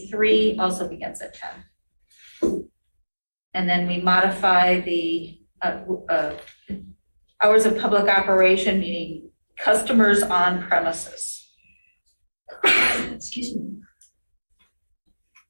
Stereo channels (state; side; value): inverted; both; correlation -1.00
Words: also begins at 10. And then we modify the hours of public operation, meaning customers on premises. Excuse me.